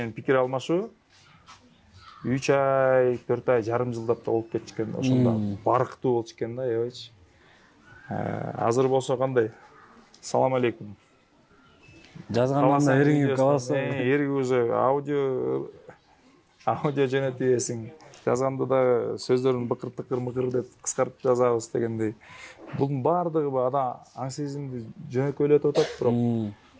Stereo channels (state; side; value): identical; both; correlation 1.00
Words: пикир алмашуу 3 ай, 4 ай, жарым жылдап да болуп кетчү экен. Ошондо барктуу болчу экен да, аябайчы. Азыр болсо кандай? Салам алейкум. Жазгандан эриңип каласың. Эриги уже аудио жөнөтүп ийесиң. Жазганда да сөздөрүн быкыр-тыкыр деп кыскартып жазабыз дегендей. Бунун баардыгы адам аң сезимди жөнөкөйлөтүп атат, бирок